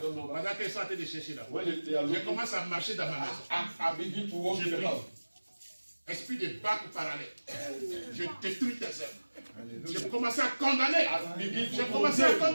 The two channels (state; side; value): inverted; both; correlation -1.00